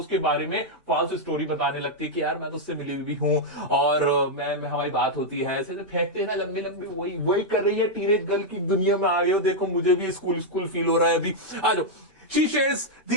उसके बारे में फॉल्स स्टोरी बताने लगती है कि यार मैं तो उससे मिली हुई हूँ और मैं हमारी बात होती है, ऐसे फेंकते हैं ना लंबी लंबी, वही कर रही है। टीनेज गर्ल की दुनिया में आ गए हो, देखो मुझे भी स्कूल फील हो रहा है अभी। आ जाओ। She shares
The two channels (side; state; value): both; normal; correlation -0.03